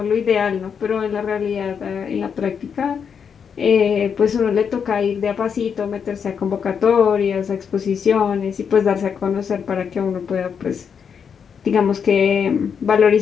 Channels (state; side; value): quieter; right; 6.9 dB